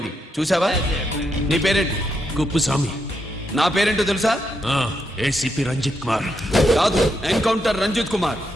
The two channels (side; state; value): both; normal; correlation 0.81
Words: చూసావా? నీ పేరేంటి? కుప్పుస్వామి. నా పేరేంటో తెలుసా? ఏసీపీ రంజిత్ కుమార్. కాదు, ఎన్కౌంటర్ రంజిత్ కుమార్.